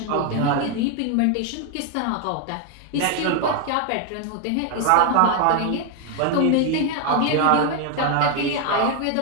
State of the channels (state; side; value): different; both; correlation 0.01